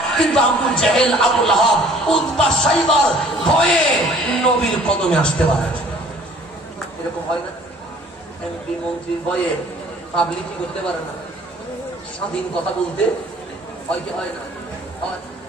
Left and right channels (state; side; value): normal; both; correlation 0.54